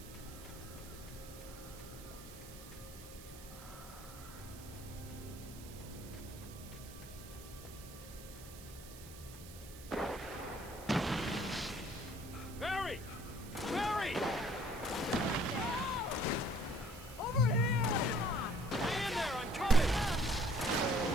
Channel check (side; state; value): right; noise; hiss, 16 dB below the sound